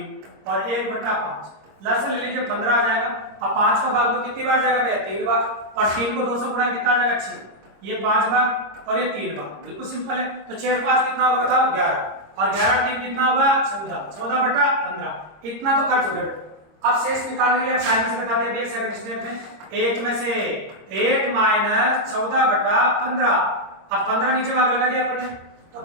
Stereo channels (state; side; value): late; left; 26 ms